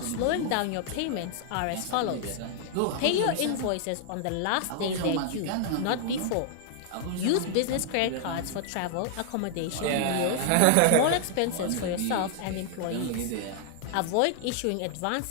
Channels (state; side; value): different; both; correlation 0.00